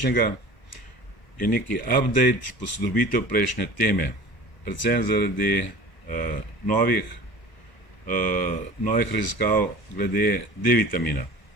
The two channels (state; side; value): late; right; 1.0 ms